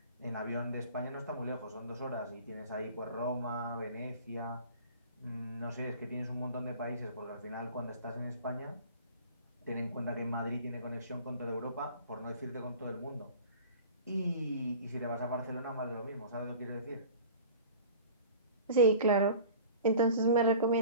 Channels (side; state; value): both; inverted; correlation -0.42